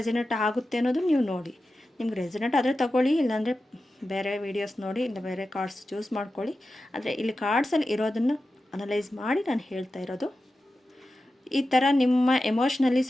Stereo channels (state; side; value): normal; both; correlation 0.92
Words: ಆಗುತ್ತೆ ಅನ್ನೋದು ನೀವು ನೋಡಿ. ನಿಮ್ಗೆ ರೆಸಿನೇಟ್ ಆದರೆ ತಗೊಳ್ಳಿ, ಇಲ್ಲಾಂದರೆ ಬೇರೆ ವೀಡಿಯೋಸ್ ನೋಡಿ, ಇಲ್ಲ ಬೇರೆ ಕಾರ್ಡ್ಸ್ ಚೂಸ್ ಮಾಡ್ಕೊಳ್ಳಿ. ಆದರೆ ಇಲ್ಲಿ ಕಾರ್ಡ್ಸಲ್ಲಿ ಇರೋದನ್ನು ಅನಲೈಸ್ ಮಾಡಿ ನಾನು ಹೇಳ್ತಾ ಇರೋದು. ಈ ಥರ ನಿಮ್ಮ ಎಮೋಷ್ನಲಿ